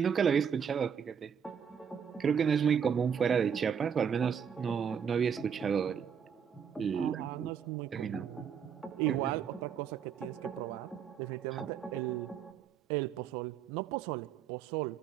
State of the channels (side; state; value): left; quieter; 7.5 dB